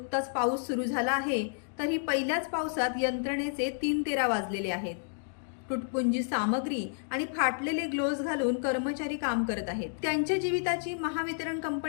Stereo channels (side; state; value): right; silent; digital silence